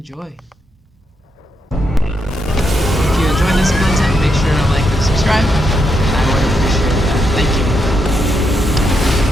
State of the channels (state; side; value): normal; both; correlation 0.80